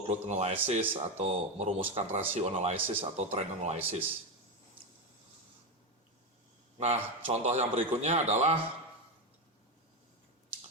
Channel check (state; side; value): normal; both; correlation 0.11